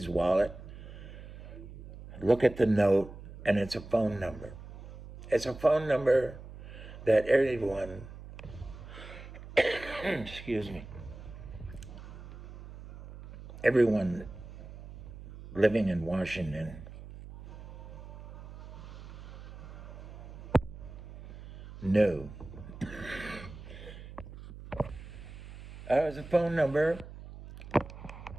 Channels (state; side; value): noise; right; hum, 14 dB below the sound